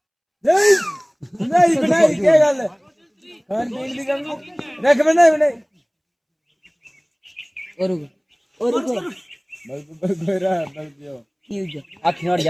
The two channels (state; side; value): identical; both; correlation 1.00